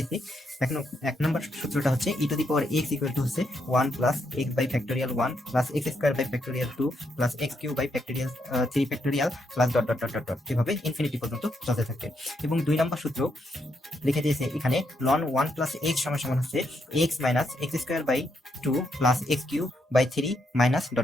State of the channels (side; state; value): both; normal; correlation 0.78